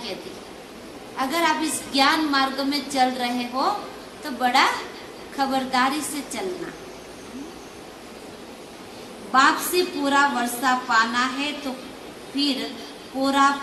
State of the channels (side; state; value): both; identical; correlation 1.00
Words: अगर आप इस ज्ञान मार्ग में चल रहे हो तो बड़ा खबरदारी से चलना। बाप से पूरा वर्षा पाना है तो फिर पूरा